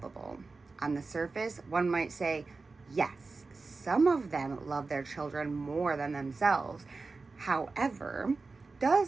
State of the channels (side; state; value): left; quieter; 3.9 dB